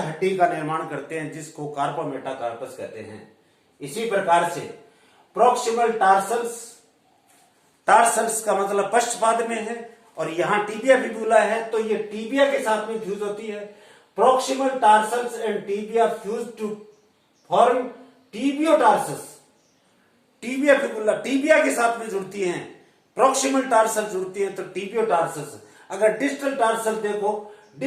का निर्माण करते हैं जिसको कार्पोमेटाकार्पस कहते हैं। इसी प्रकार से प्रॉक्सिमल टार्सल्स, टार्सल्स का मतलब पश्चपाद में है और यहां टीबिया फिबुला है, तो ये टीबिया के साथ में फ्यूज होती है। Proximal tarsals and tibia fuse to form tibiotarsus. Tibia fibula tibia के साथ में जुड़ती हैं, प्रॉक्सिमल टार्सल जुड़ती हैं तो टीबियोटार्सस। अगर डिस्टल टार्सल देखो,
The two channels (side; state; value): both; identical; correlation 1.00